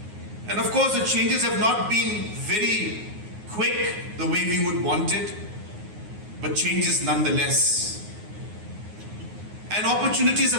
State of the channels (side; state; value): left; late; 9.5 ms